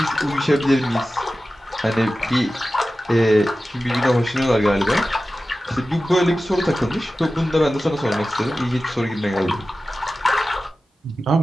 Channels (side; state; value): both; normal; correlation 0.95